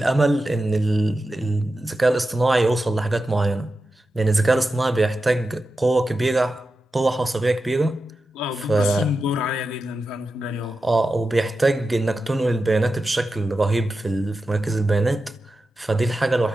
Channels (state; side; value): normal; both; correlation 0.91